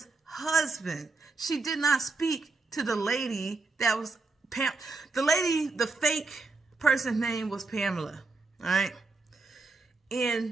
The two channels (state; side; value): quieter; left; 3.8 dB